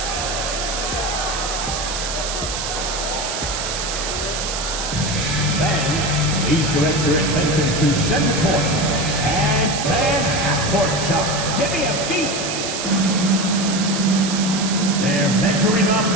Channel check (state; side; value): noise; right; hiss, 4 dB below the sound